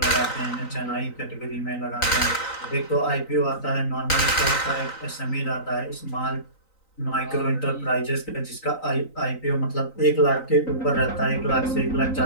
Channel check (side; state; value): right; late; 3.9 ms